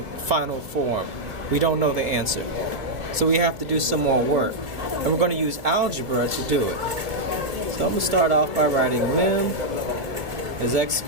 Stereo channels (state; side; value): late; left; 2.4 ms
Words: final form. We don't know the answer. So we have to do some more work. And we're going to use algebra to do it. So I'm going to start off by writing lim as x